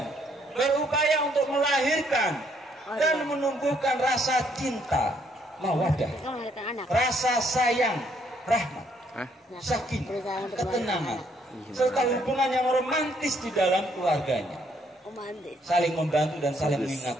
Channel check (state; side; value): normal; both; correlation 0.69